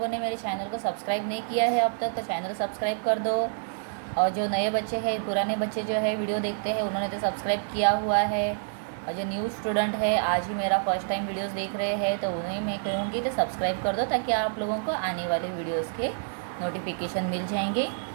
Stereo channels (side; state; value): left; silent; digital silence